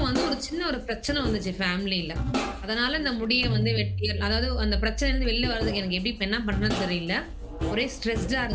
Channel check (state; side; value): identical; both; correlation 1.00